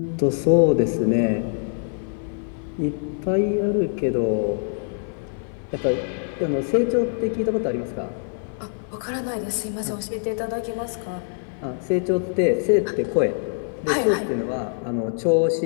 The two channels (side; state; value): right; silent; 63 dB below the other